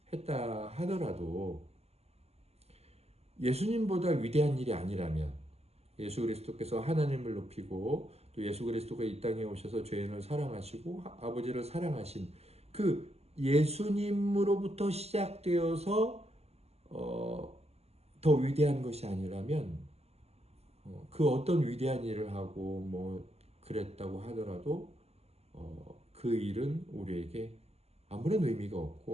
했다 하더라도 예수님보다 위대한 일이 아니라면, 예수 그리스도께서 하나님을 높이고 또 예수 그리스도가 이 땅에 오셔서 죄인을 사랑하시고 아버지를 사랑하신 그 예수님으로부터 시작되어서 더 위대한 것이 아니라면, 그 어떤 위대한 일을 하고 뭐 그랬다고 하더라도 그 일은 우리에게 아무런 의미가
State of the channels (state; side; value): late; left; 0.30 ms